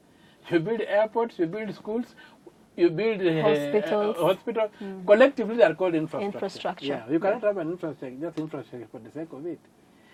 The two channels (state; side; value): identical; both; correlation 1.00